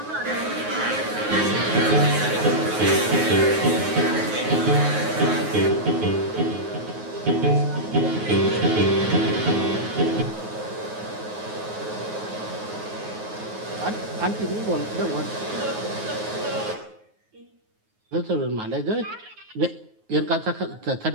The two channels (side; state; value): left; late; 9.4 ms